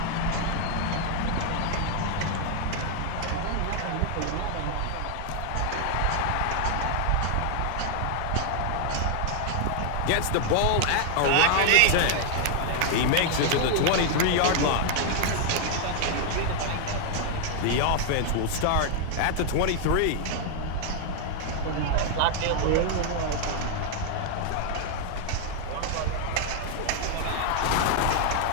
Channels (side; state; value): both; different; correlation 0.00